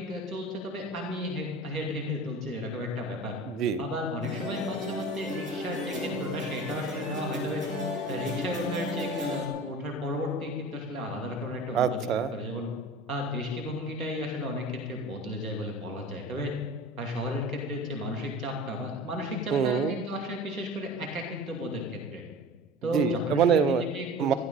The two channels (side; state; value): both; normal; correlation 0.37